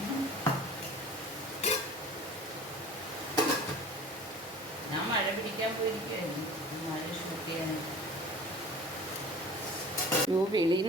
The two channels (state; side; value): normal; both; correlation 0.41